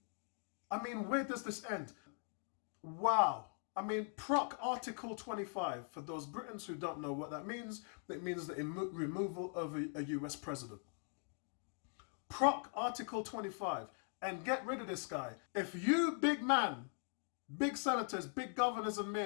I mean, where does this end? Wow. I mean, PROC Article 25, for those Britons who don't know what that means, it means the removal of a US president. PROC Article 25, and get rid of this guy. If you, big man, big senators, big governors and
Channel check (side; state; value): right; silent; 50 dB below the other